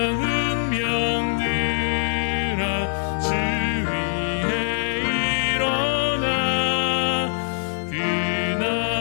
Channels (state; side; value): silent; right; digital silence